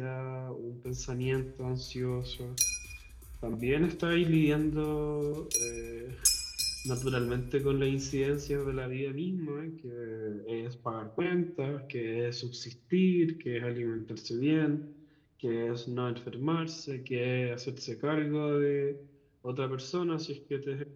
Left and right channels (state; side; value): identical; both; correlation 1.00